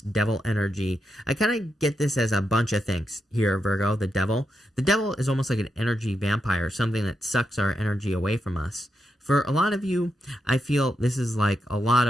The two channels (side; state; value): both; normal; correlation 0.85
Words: Devil energy. I kind of get this as a bunch of things here, Virgo, the Devil. The Devil is almost like an energy vampire, something that sucks our energy away from us. For a lot of you, I feel this is like a lot